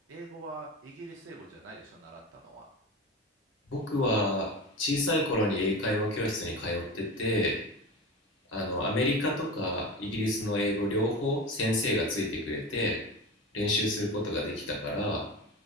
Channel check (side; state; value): both; normal; correlation 0.28